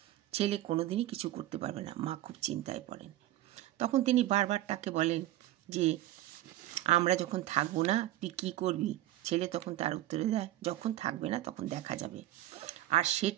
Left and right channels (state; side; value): quieter; left; 14.9 dB